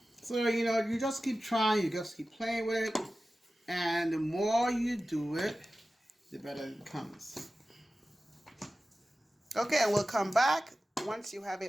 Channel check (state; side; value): normal; both; correlation 0.95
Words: So, you know, you just keep trying, you just keep playing with it. And the more you do it, the better it becomes. Okay, and we'll come back once you have